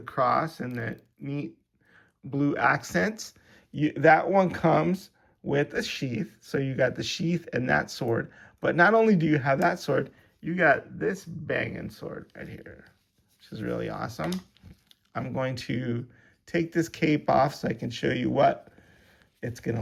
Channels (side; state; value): both; identical; correlation 1.00